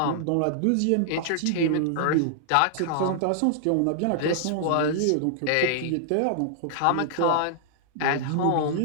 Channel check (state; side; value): different; both; correlation -0.01